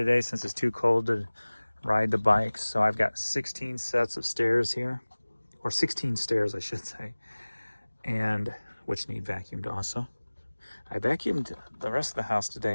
since it's too cold to ride the bike. So I've got 16 sets of stairs here. Or 16 stairs, I should say. And which need vacuumed also. I vacuumed the rest of the house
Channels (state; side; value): inverted; both; correlation -1.00